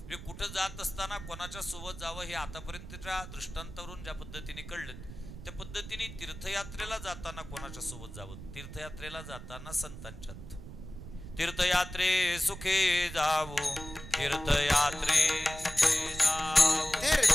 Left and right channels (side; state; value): right; noise; rumble, 12 dB below the sound